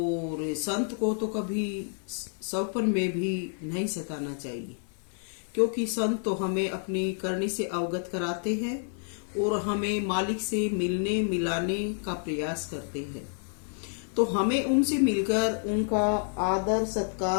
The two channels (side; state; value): right; silent; 59 dB below the other